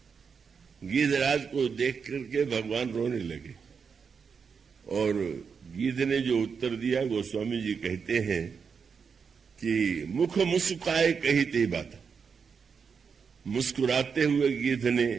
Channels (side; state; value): left; quieter; 6.0 dB